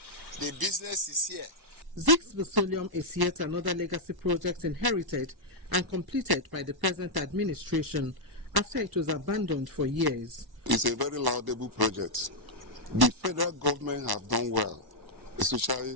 The business is here. Zix Petroleum is yet another legacy project inherited and completed by the present administration after it was abandoned for years. It's a very laudable project. The federal government have done well,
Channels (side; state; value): left; late; 1.1 ms